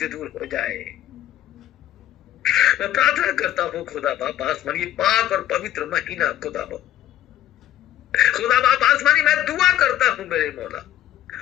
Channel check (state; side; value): quieter; right; 12.4 dB